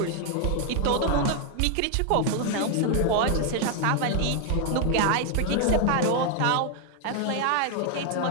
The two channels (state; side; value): different; both; correlation 0.00